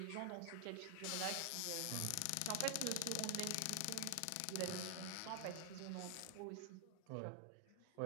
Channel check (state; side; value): different; both; correlation 0.00